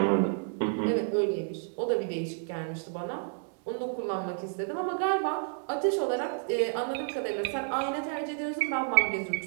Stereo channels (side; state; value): left; silent; 58 dB below the other